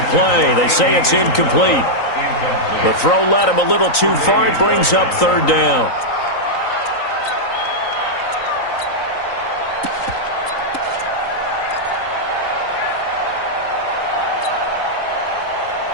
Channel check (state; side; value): late; right; 3.9 ms